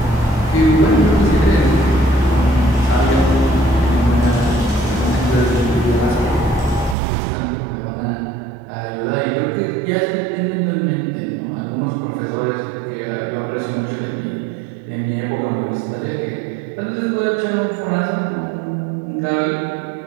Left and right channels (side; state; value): left; drops out; at 7.0 s